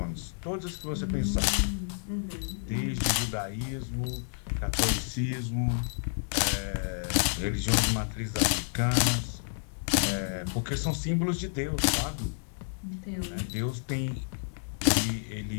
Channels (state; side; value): silent; right; digital silence